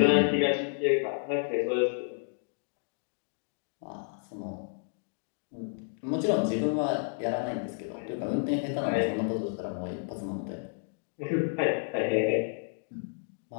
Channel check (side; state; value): right; silent; digital silence